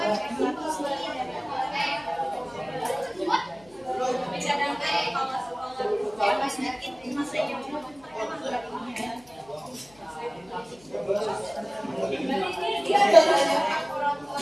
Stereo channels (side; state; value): left; noise; hum, 27 dB below the sound